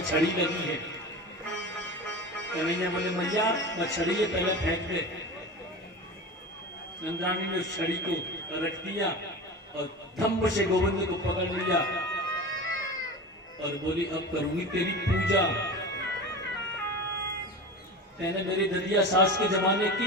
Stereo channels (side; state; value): both; normal; correlation 0.30